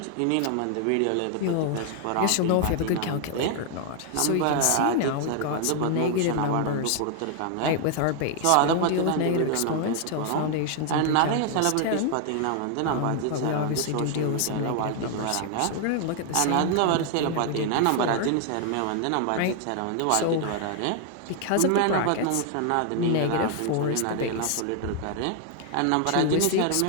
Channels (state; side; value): different; both; correlation 0.00